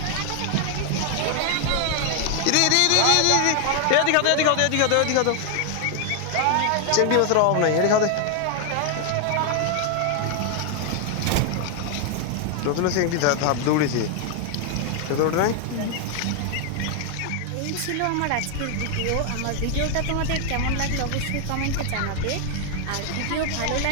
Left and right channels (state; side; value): different; both; correlation 0.00